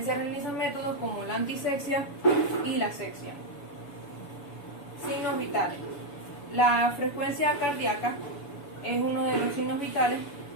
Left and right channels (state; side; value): late; right; 7.0 ms